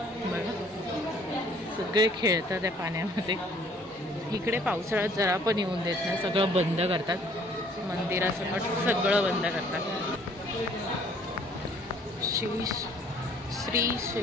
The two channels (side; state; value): both; normal; correlation 0.58